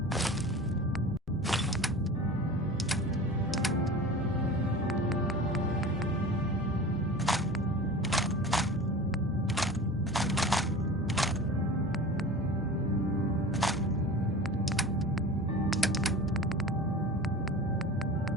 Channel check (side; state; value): both; normal; correlation 0.36